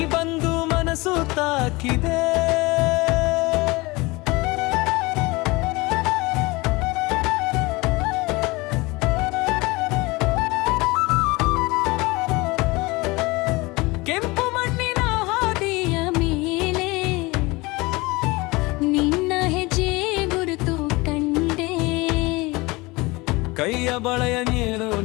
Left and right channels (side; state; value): right; quieter; 23.4 dB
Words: ಬಂದು ಮನಸ್ಸು ತಾಕಿದೆ. ಕೆಂಪು ಮಣ್ಣಿನ ಹಾದಿಯ ಮೇಲೆ ನಿನ್ನ ಹೆಜ್ಜೆ ಗುರುತು ಕಂಡೆ. ಕೈಯ ಬಳೆಯ ನೀನು